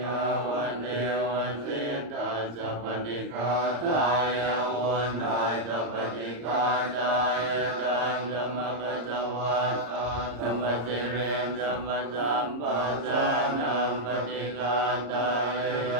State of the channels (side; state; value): left; late; 34 ms